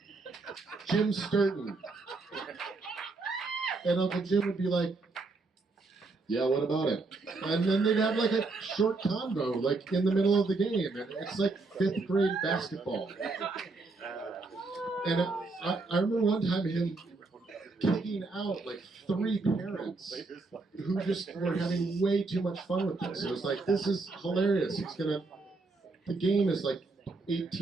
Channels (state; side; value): quieter; left; 3.7 dB